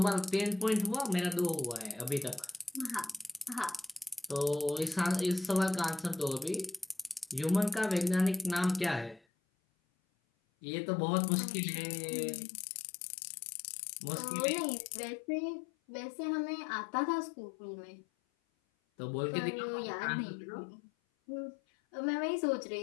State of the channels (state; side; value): drops out; right; at 9.2 s